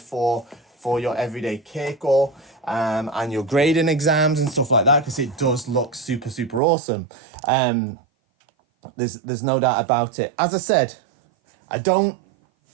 your everyday keiko and your grading exams and stuff like that, because it does look super, super awesome. There's no doubt about it. As I said, I don't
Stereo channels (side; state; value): left; drops out; at 6.6 s